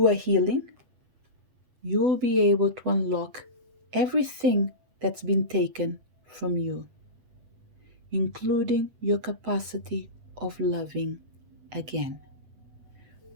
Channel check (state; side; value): late; left; 8.2 ms